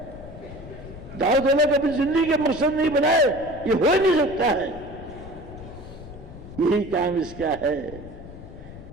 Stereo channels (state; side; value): noise; left; rumble, 15 dB below the sound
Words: دعوت اللہ کو اپنی زندگی کے مقصد نہیں بنائے, یہ ہو نہیں سکتا ہے. یہی کام اس کا ہے,